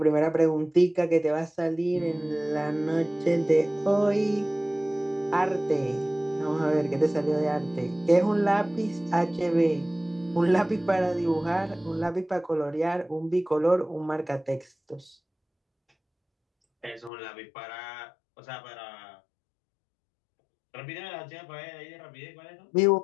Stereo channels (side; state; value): right; drops out; at 17.1 s